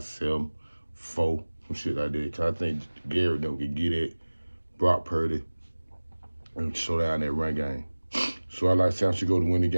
4, some shit like that. Cause I think Gary can get it, Brock Purdy, and slow down that run game. So I like San Francisco to win the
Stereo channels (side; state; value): both; inverted; correlation -1.00